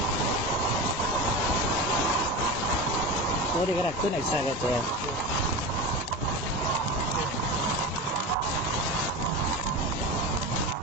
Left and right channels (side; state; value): both; normal; correlation 0.26